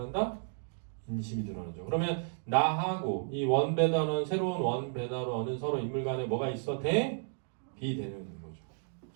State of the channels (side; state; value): left; silent; digital silence